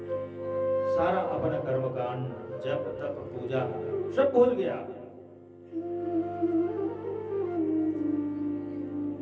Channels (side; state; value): both; identical; correlation 1.00